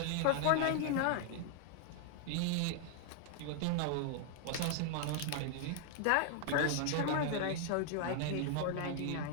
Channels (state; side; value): different; both; correlation 0.00